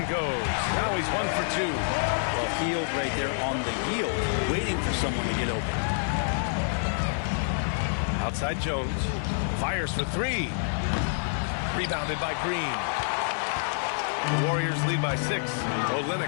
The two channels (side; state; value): right; silent; 60 dB below the other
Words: goes. Now he's 1 for 2. Well, Hield right there on the yield, waiting for someone to get open. Outside Jones. Fires for 3. Rebounded by Green. The Warriors lead by 6.